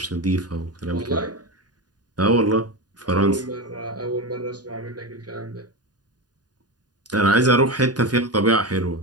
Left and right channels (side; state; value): left; late; 0.69 ms